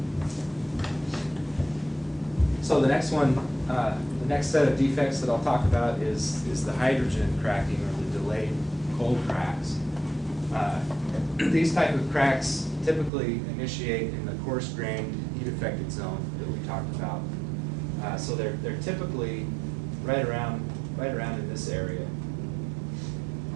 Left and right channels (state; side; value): drops out; left; at 13.1 s